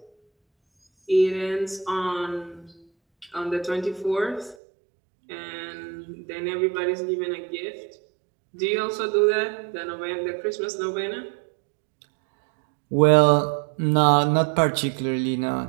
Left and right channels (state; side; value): drops out; left; at 4.5 s